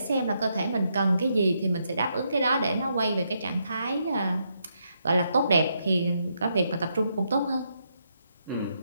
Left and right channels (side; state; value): both; inverted; correlation -0.79